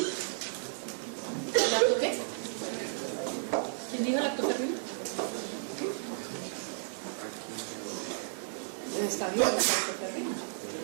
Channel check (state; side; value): silent; left; 56 dB below the other